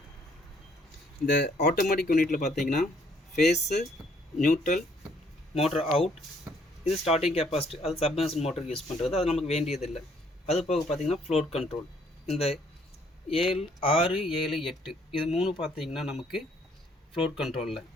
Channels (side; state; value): both; normal; correlation 0.65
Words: இந்த ஆட்டோமேட்டிக் யூனிட்டில் பார்த்தீங்கன்னா ஃபேஸு, நியூட்ரல், மோட்டர் அவுட், இது ஸ்டார்டிங் கெப்பாசிட்டி, அது சப்மர்சன் மோட்டருக்கு யூஸ் பண்ணுறது, அது நமக்கு வேண்டியதில்லை. அது போக பார்த்தீங்கன்னா ஃப்ளோட் கண்ட்ரோல், இந்த 6, 7, 8 இது 3 பார்த்தீங்கன்னா நமக்கு ஃப்ளோட் கண்ட்ரோலில்.